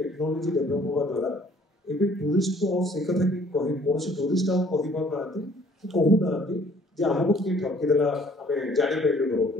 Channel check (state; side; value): normal; both; correlation 0.58